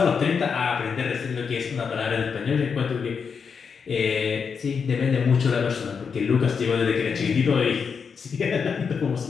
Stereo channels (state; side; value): quieter; right; 6.1 dB